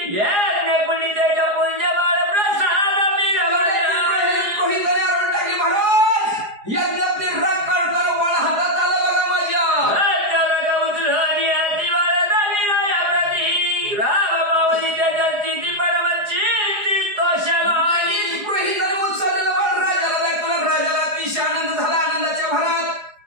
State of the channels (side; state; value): left; late; 4.8 ms